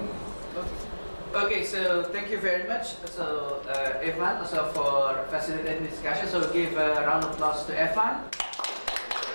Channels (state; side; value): inverted; both; correlation -1.00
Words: Okay, so thank you very much. So Evan, also for facilitating discussion. So give a round of applause to Evan.